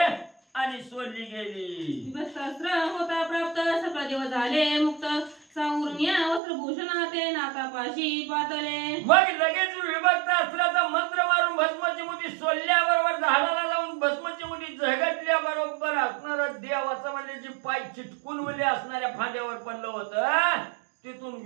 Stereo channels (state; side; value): drops out; left; at 6.4 s